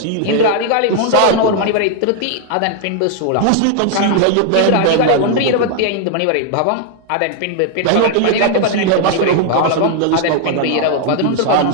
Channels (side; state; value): both; different; correlation 0.00